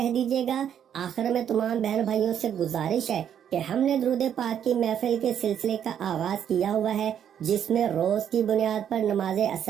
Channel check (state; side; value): quieter; left; 9.2 dB